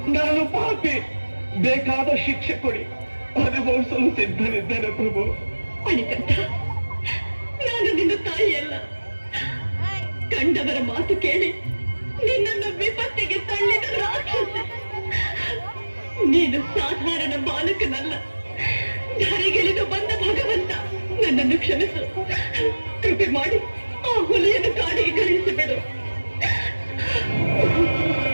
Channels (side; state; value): both; inverted; correlation -1.00